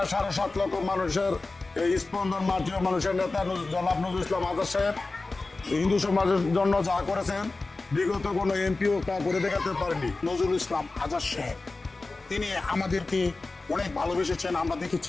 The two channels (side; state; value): right; quieter; 3.4 dB